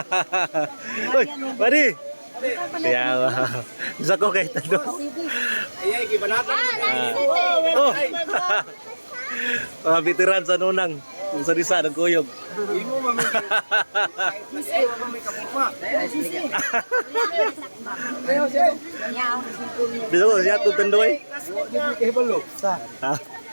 Uy, pari. Kaya bisa ko kay tado. Ayay, gibanatan. Oh. Mga veteran sa nunang. Kung sa risa ng kuyog. Imo mami. Imo mami kapugma. Bisa ko siya tutundoy. Kay balo. Sa.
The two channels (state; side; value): inverted; both; correlation -1.00